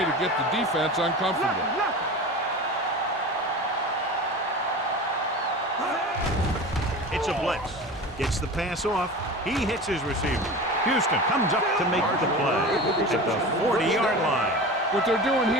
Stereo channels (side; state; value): both; normal; correlation 0.32